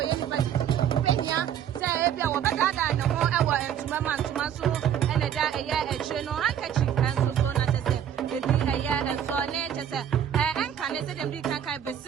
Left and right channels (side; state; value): left; quieter; 9.5 dB